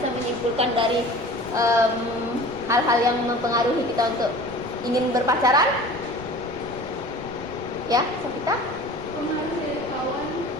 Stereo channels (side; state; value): right; noise; rumble, 18 dB below the sound